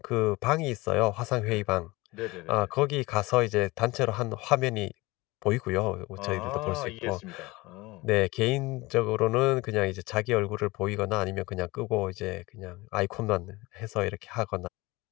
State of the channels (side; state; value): right; quieter; 22.0 dB